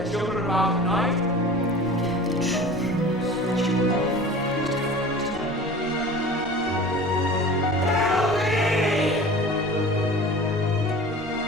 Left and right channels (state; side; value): normal; both; correlation 0.40